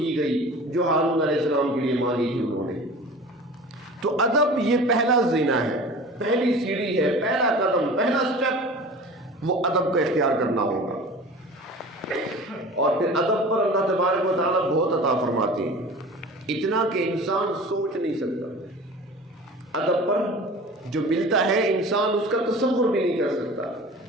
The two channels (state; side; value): normal; both; correlation 0.39